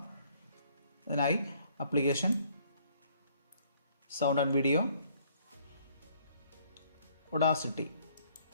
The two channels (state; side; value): inverted; both; correlation -0.63